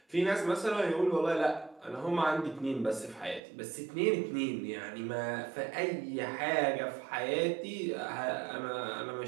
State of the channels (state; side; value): drops out; left; at 3.4 s